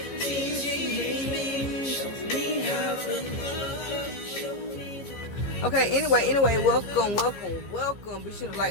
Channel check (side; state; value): right; late; 15 ms